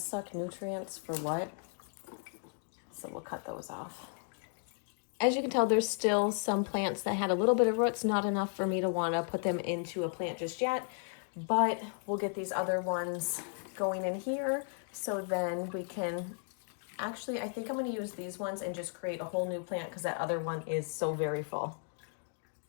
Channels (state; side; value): silent; right; 55 dB below the other